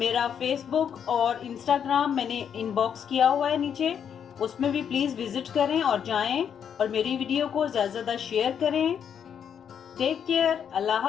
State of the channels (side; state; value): right; quieter; 8.1 dB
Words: फेसबुक और इंस्टाग्राम मैंने इनबॉक्स किया हुआ है नीचे, उसमें भी प्लीज विजिट करें और जाएं और मेरी वीडियो को ज्यादा से ज्यादा शेयर करें। टेक केयर, अल्लाह